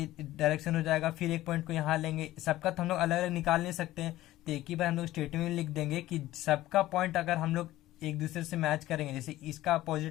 डायरेक्शन हो जाएगा, फिर एक पॉइंट को यहाँ लेंगे, सबका तो हम लोग अलग अलग निकाल नहीं सकते हैं, तो एक ही बार हम लोग स्टेटमेंट में लिख देंगे कि सबका पॉइंट अगर हम लोग एक दूसरे से मैच करेंगे, जैसे इसका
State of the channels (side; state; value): right; quieter; 15.7 dB